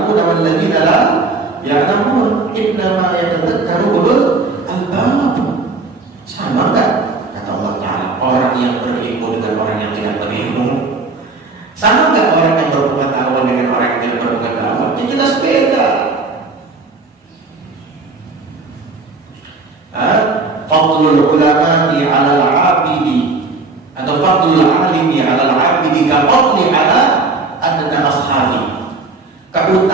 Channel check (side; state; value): left; quieter; 3.8 dB